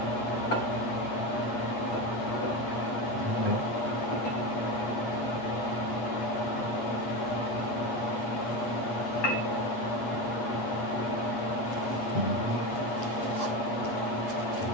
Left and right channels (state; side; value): late; right; 8.4 ms